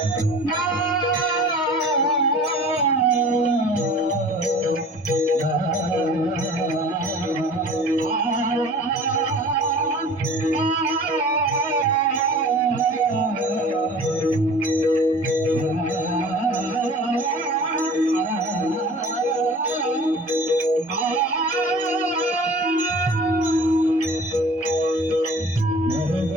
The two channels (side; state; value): both; normal; correlation 0.44